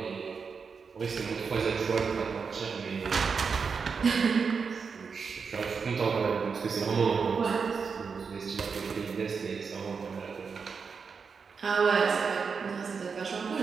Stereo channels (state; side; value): quieter; left; 5.5 dB